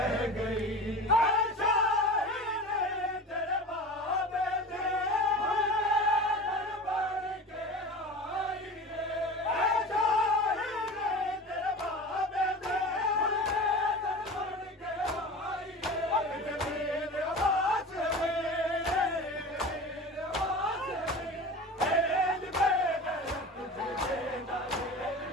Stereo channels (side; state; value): both; normal; correlation 0.33